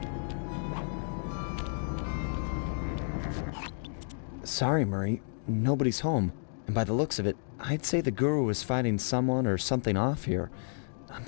Sorry, Murray. Nobody's home. And by the looks of it, I'd say the guru is fighting someone or something off here. I'm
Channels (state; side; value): silent; right; digital silence